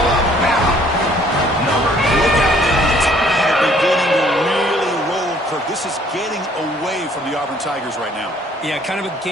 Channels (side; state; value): both; normal; correlation 0.60